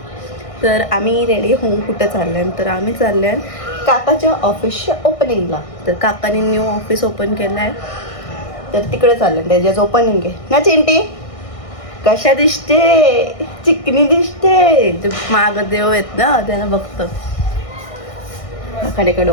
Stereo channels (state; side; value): late; right; 1.6 ms